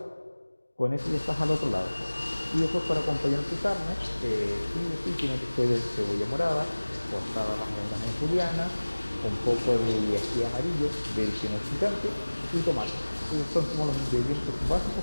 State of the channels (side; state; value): both; inverted; correlation -1.00